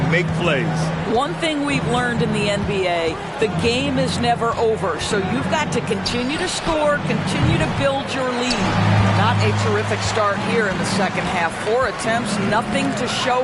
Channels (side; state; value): both; identical; correlation 1.00